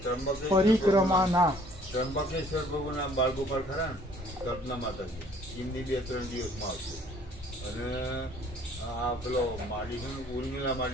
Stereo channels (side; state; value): both; normal; correlation 0.58